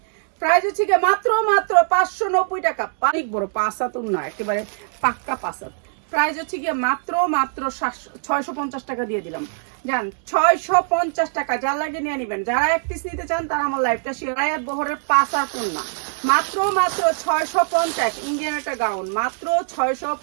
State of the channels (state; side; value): silent; left; digital silence